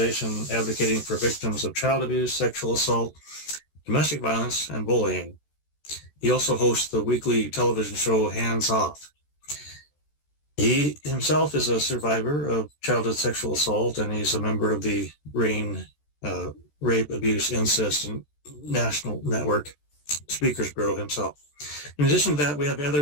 advocating for victims of child abuse, sexual assault, domestic violence, and bullying. He also hosts the weekly television show Hands Off. He himself is a survivor of childhood sexual assault, and he's a member of the RAIN Rape, Abuse, Incest, and National Network Speakers Bureau himself. In addition to that, we have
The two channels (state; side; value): late; right; 14 ms